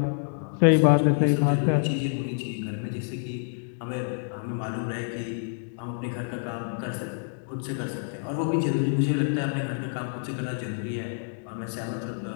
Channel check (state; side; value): silent; right; digital silence